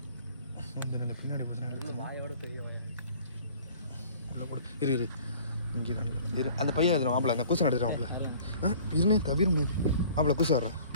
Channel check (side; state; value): both; inverted; correlation -0.50